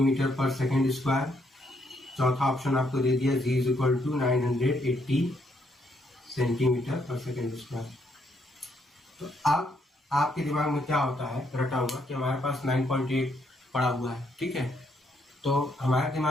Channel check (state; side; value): normal; both; correlation 0.73